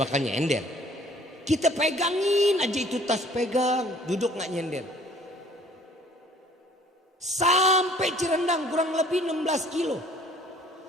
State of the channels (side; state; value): both; normal; correlation 0.55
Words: bakal nyender. Kita pegangin aja itu tas, pegang. Duduk nggak nyender. Sampai Cirendang kurang lebih 16 kilo.